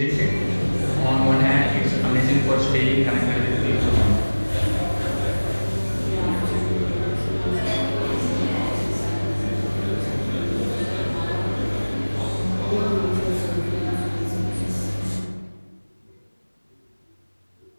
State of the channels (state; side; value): inverted; both; correlation -1.00